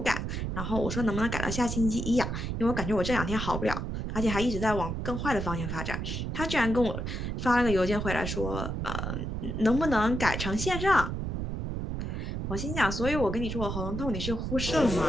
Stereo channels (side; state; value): right; noise; rumble, 3 dB below the sound